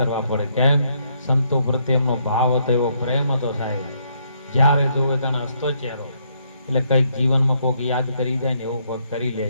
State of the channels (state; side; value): inverted; both; correlation -0.73